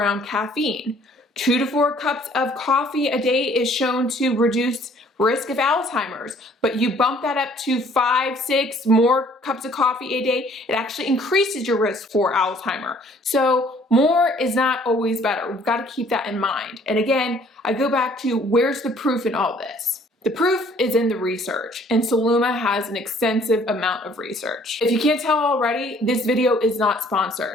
caffeine. 2 to 4 cups of coffee a day is shown to reduce risk of Alzheimer's, but you bump that up to 5, 6 more cups of coffee a day, it actually increases your risk for Alzheimer. So more is not always better. We've got to keep that in mind. And again, I go back to where's the proof in all this? The proof is in the research, and Celluma has an extensive amount of research. If you can't tell already, this video is not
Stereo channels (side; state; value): both; normal; correlation 0.58